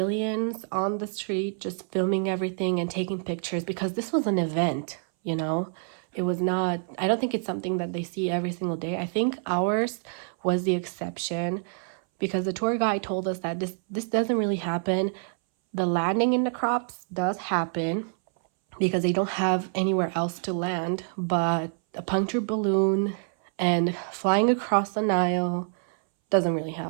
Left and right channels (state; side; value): silent; left; 60 dB below the other